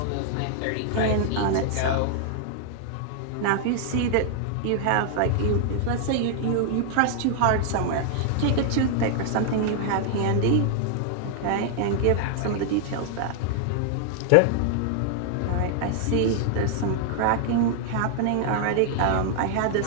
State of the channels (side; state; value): both; different; correlation 0.00